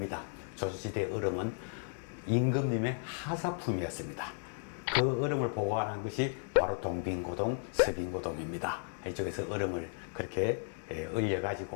조선시대 얼음은 임금님의 하사품이었습니다. 그 얼음을 보관한 것이 바로 동빙고동, 서빙고동입니다. 이쪽에서 얼음을 그렇게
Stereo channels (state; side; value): silent; right; 55 dB below the other